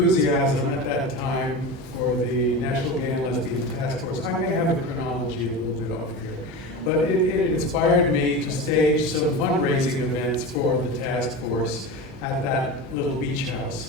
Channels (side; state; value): both; normal; correlation 0.26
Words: at that time for the National Gay and Lesbian Task Force, I may have the chronology a little bit off here, but it inspired me to stage some fundraising events for the task force at that little beach